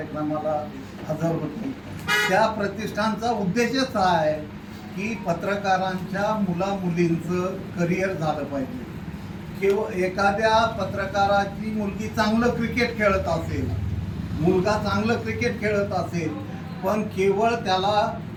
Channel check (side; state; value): both; identical; correlation 1.00